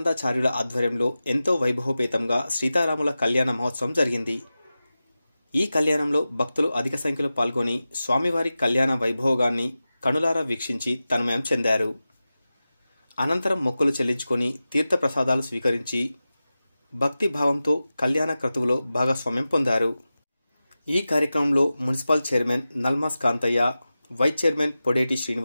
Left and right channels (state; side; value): inverted; both; correlation -0.95